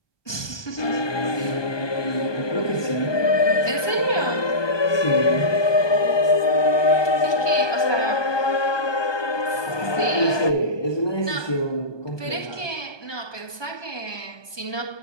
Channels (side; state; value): right; late; 1.2 ms